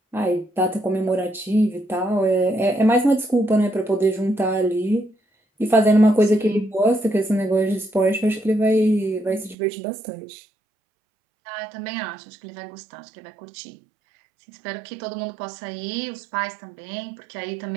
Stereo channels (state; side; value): drops out; left; at 9.6 s